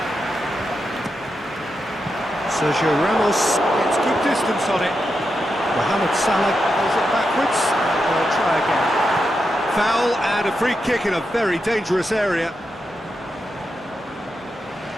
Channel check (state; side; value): normal; both; correlation 0.87